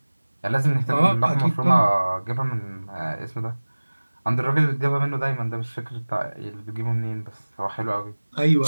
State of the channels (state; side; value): inverted; both; correlation -1.00